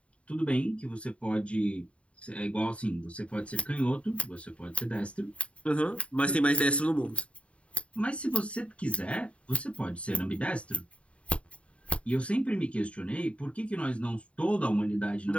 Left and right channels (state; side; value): late; right; 0.063 ms